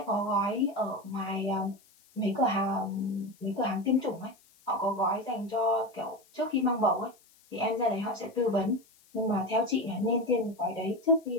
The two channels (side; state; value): left; noise; hiss, 30 dB below the sound